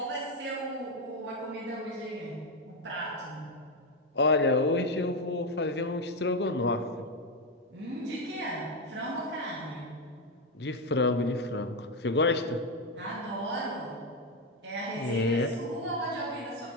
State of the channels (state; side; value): normal; both; correlation 0.08